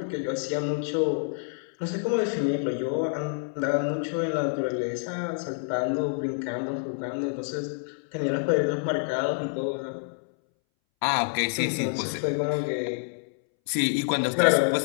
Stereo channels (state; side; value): silent; right; 60 dB below the other